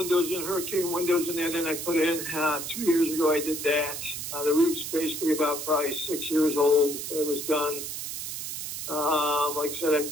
in, Hurricane windows in there. Then I put in 2 years ago. I did that. The roof's basically about probably 6 years old. It was done. Like I said,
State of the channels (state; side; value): noise; right; hiss, 6 dB below the sound